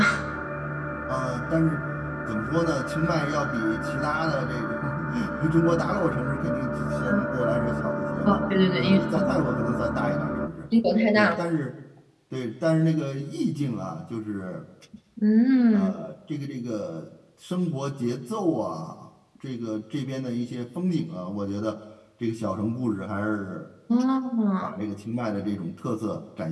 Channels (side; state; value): both; identical; correlation 1.00